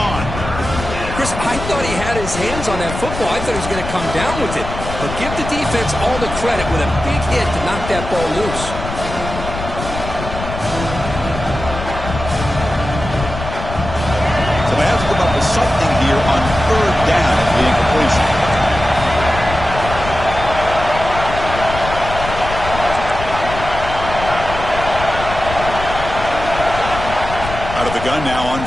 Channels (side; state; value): left; noise; rumble, 8 dB below the sound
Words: Chris, I thought he had his hands on that football. I thought he was going to come down with it. But give the defense all the credit with a big hit to knock that ball loose. So they have to come up with something here on third down at the incompletion. Out of the gun now on